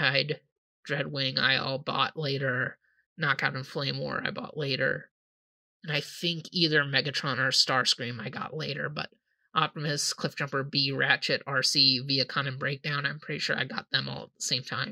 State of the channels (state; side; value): identical; both; correlation 1.00